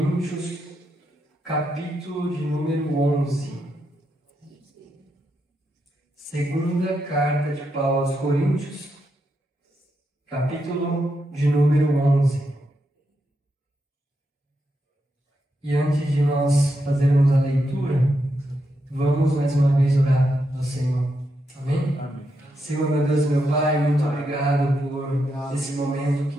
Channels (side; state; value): both; normal; correlation 0.83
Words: capítulo de número 11. Segunda carta de Paulo aos Coríntios, capítulo de número 11. E antes de nós fazermos a leitura, vamos mais uma vez orar ao Senhor. Amém? Amém. Senhor, meu Deus, meu Pai, muito obrigado por esse momento que